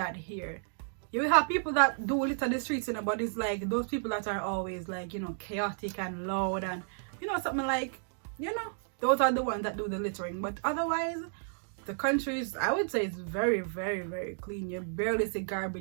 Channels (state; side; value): silent; left; digital silence